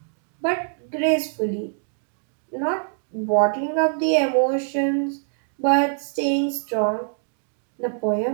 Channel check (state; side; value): silent; left; digital silence